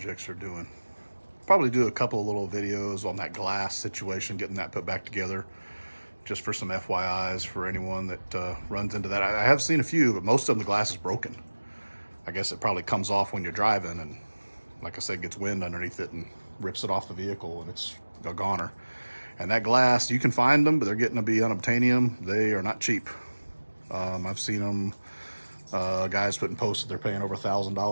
are doing. Probably do a couple of little videos on that glass situation, getting that put back together, just for some FYIs for anyone that runs into that. I have seen a few, but most of them, the glass is broken. I guess it probably comes off when you're driving, and like I said, gets wind underneath it and rips it off the vehicle, and it's a goner. And that glass, you can find them, but they're getting to be unobtainium. They are not cheap. I've seen them, guys putting posts that they're paying over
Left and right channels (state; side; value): inverted; both; correlation -1.00